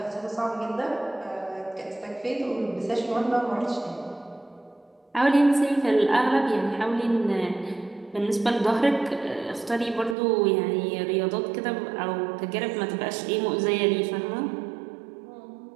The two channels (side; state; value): left; drops out; at 10.2 s